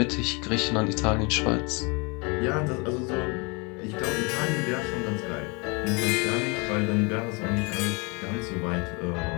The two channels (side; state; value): right; quieter; 30.0 dB